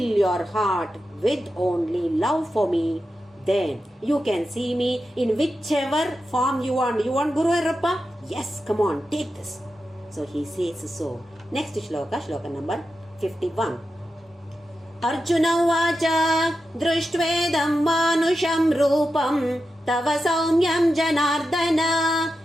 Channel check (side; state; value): both; normal; correlation 0.90